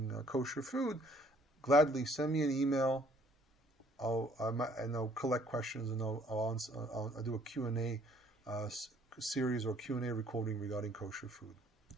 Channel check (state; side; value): normal; both; correlation 0.61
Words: kosher food, gladly send me an email. I'll collect questions, and I'll do a Q&A series or Q&A recording regarding kosher food.